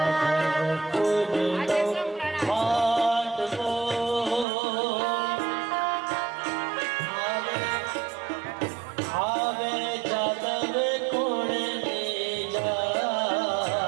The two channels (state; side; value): drops out; left; at 4.5 s